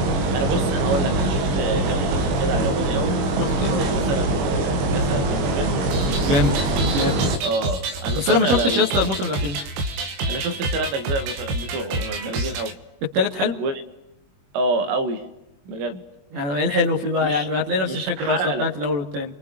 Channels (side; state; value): left; late; 21 ms